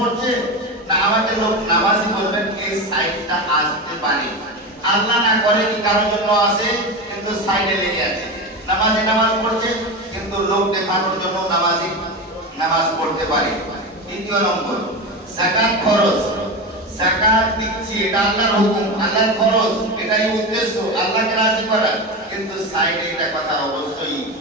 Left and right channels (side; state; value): both; normal; correlation 0.21